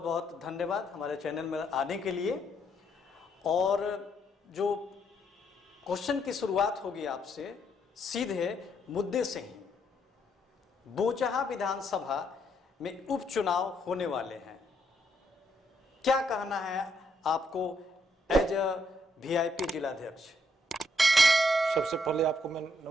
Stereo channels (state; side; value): normal; both; correlation 0.74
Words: बहुत धन्यवाद हमारे चैनल में आने के लिए। और जो क्वेश्चन की शुरुआत होगी आपसे सीधे मुद्दे से ही। बोचहा विधानसभा में उपचुनाव होने वाले हैं, क्या कहना है आपको एज अ वीआईपी जिलाध्यक्ष? सबसे पहले आपको मैं